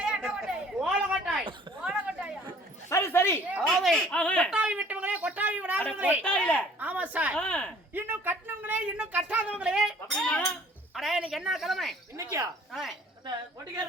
அட்டை கொட்டாயா? ஓல கொட்டாய். ஓல கொட்டாயா? சரி சரி. அதாவது ஆஹா. கொட்டாவி விட்டவங்களே கொட்டாவி அட விடாதவங்களே. கொட்டாயில. ஆமா சார். ஆ. இன்னும் கட்டினவங்களே இன்னும் கட்டாதவங்களே. அப்படினா அட இன்னைக்கு என்ன கிழமை? இன்னைக்கியா? ஆ. அந்த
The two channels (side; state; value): both; normal; correlation 0.54